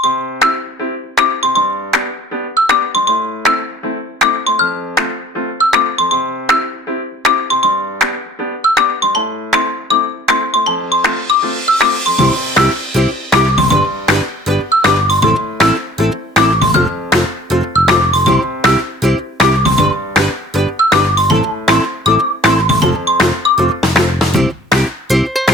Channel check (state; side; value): normal; both; correlation 0.53